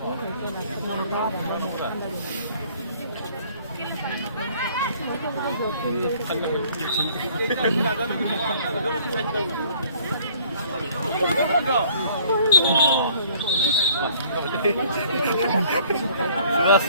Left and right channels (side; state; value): both; inverted; correlation -0.57